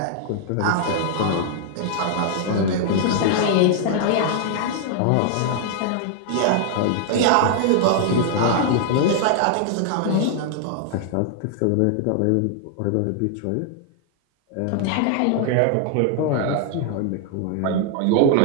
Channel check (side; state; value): both; different; correlation 0.00